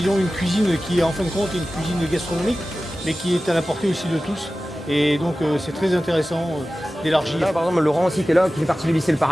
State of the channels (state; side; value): normal; both; correlation 0.95